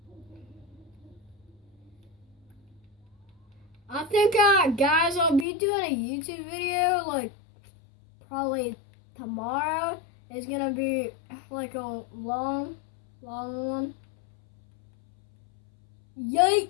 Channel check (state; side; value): drops out; right; at 5.5 s